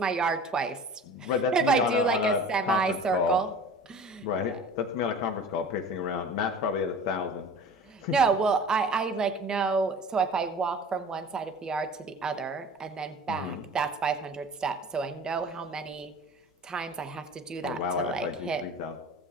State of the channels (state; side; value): normal; both; correlation 0.41